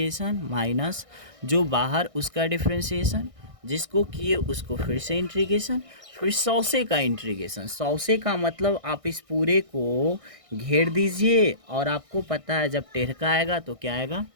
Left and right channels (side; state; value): left; late; 1.6 ms